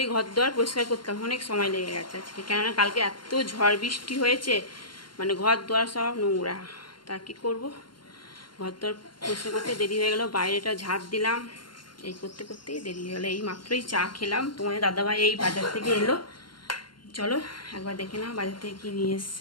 ঘর দুয়ার পরিষ্কার করতাম, অনেক সময় লেগে গেছে আজকে, কেননা কালকে এত ঝড় বৃষ্টি হয়েছে, মানে ঘর দুয়ার সব নোংরা। তা কি করবো, ঘর তোর পরিষ্কার করতে দেরি হয়ে গেল। বাইরেটা ঝাঁট দিলাম, এই করতে করতেই দেরি হয়ে গেলো। এই মাত্রই চা খেলাম, তোমাদের দাদাভাই এই বাজার থেকে এলো। চলো একবার দেখে নাও বাজার থেকে কি নিয়ে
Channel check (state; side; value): late; right; 0.72 ms